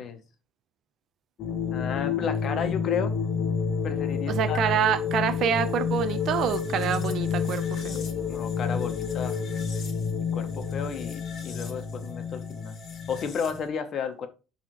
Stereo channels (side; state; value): both; normal; correlation 0.51